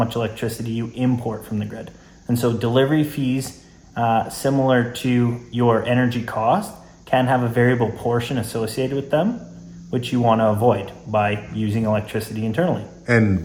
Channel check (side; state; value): both; identical; correlation 1.00